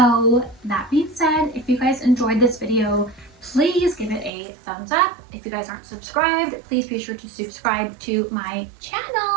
that being said, if you guys enjoyed this video, please give it a thumbs up. If you guys aren't subscribed, please be sure to subscribe to my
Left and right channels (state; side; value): drops out; left; at 4.3 s